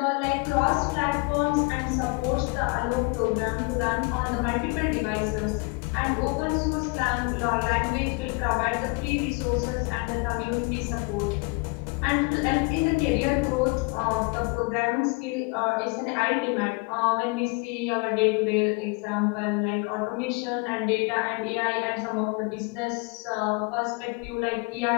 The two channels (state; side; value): quieter; right; 29.9 dB